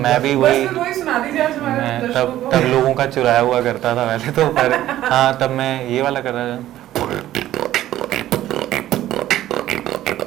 भी वही सुना दीजिए आज हमारे मैं दर्शकों को। तब लोगों का चुराया हुआ करता था वैसे तो, पर हाँ तब मैं ये वाला कर रहा था।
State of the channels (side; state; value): left; quieter; 13.6 dB